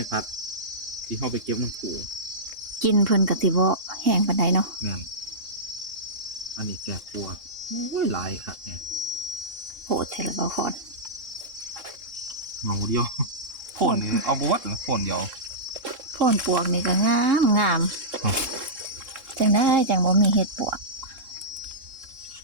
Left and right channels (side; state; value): left; late; 3.7 ms